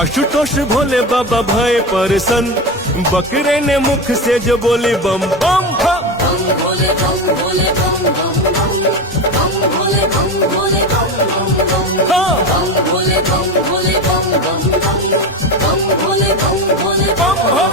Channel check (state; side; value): normal; both; correlation 0.21